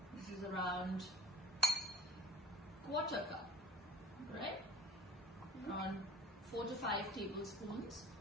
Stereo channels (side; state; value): both; normal; correlation 0.43